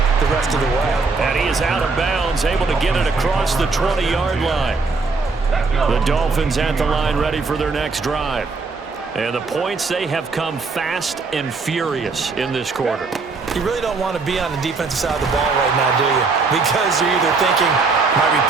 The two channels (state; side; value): quieter; left; 4.2 dB